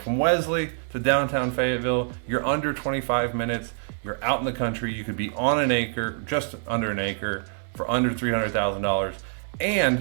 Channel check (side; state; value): left; silent; digital silence